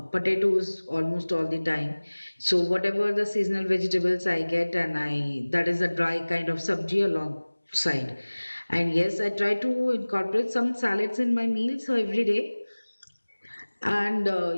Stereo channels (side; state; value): both; inverted; correlation -1.00